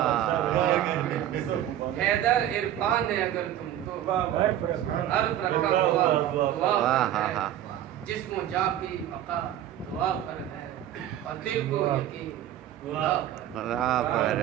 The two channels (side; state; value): left; quieter; 11.8 dB